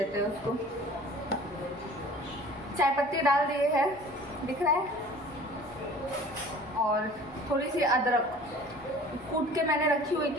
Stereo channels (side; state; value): both; normal; correlation 0.46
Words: हैं उसको। चाय पत्ती डाल दिए है, दिख रहा है, और थोड़ी सी अदरक कूट के मैंने रखी हुई